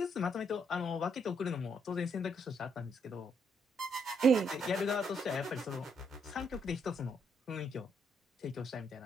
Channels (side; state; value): both; normal; correlation 0.73